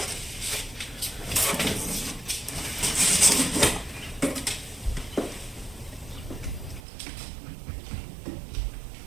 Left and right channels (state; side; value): drops out; left; at 6.9 s